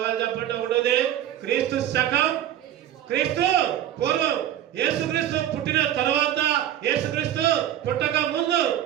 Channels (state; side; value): quieter; left; 11.6 dB